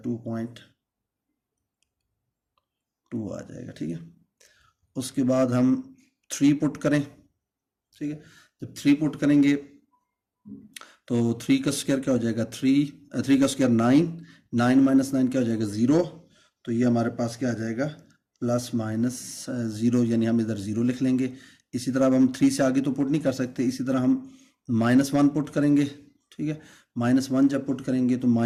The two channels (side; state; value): both; identical; correlation 1.00